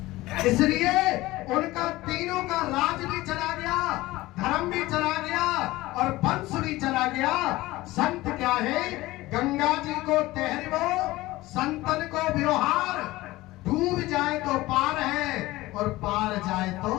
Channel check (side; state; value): right; quieter; 18.6 dB